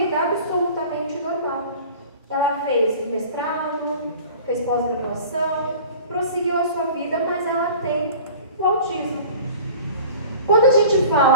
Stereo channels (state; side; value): inverted; both; correlation -0.42